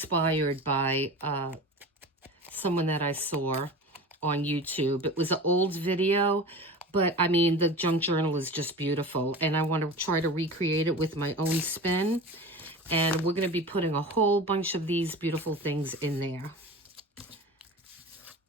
by someone that I saw on YouTube. It was an old video, but I mean, the junk journal is just beautiful, and I want to try to recreate it with my own spin. And we're going to be putting a whole bunch of these beautiful things in there.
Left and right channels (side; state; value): both; normal; correlation 0.33